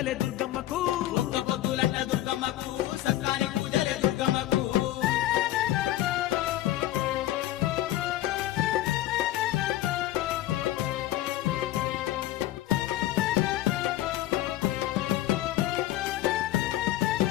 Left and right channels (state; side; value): quieter; right; 14.7 dB